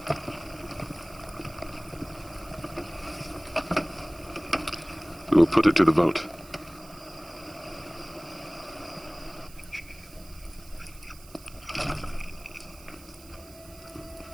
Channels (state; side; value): noise; right; hiss, 21 dB below the sound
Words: We will put it to the vote.